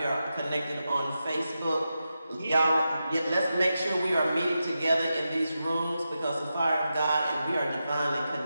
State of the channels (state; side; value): inverted; both; correlation -0.89